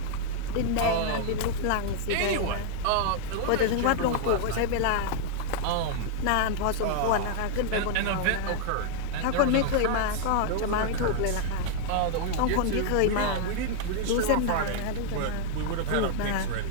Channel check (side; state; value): both; different; correlation -0.01